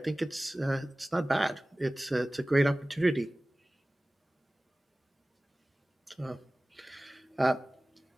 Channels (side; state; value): both; normal; correlation 0.98